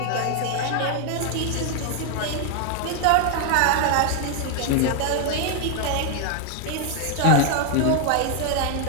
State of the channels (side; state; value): both; different; correlation 0.00